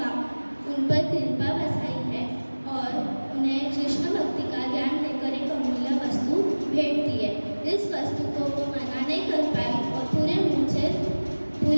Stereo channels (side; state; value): both; inverted; correlation -1.00